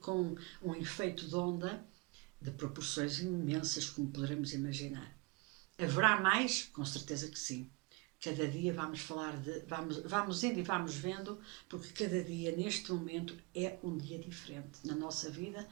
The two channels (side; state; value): left; quieter; 27.3 dB